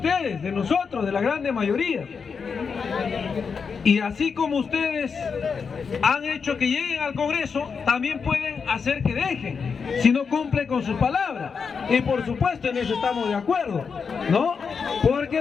de nosotros, de la grande mayoría. Y así como ustedes han hecho que lleguen al Congreso, también pueden hacer que dejen, si no cumplen con su palabra. Y por supuesto en eso estamos de acuerdo, ¿no? Porque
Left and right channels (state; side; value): quieter; right; 5.7 dB